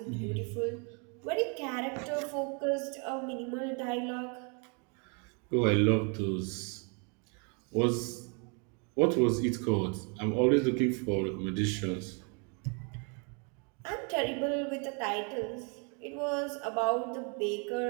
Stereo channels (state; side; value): quieter; left; 36.1 dB